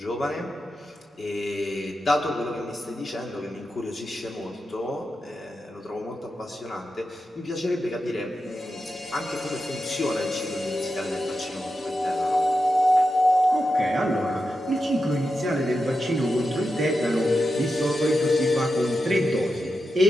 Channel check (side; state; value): both; normal; correlation 0.89